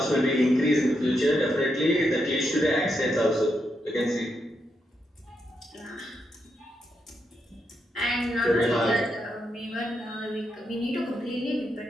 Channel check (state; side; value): normal; both; correlation 0.82